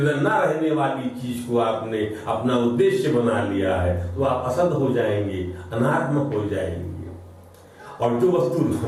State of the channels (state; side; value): identical; both; correlation 1.00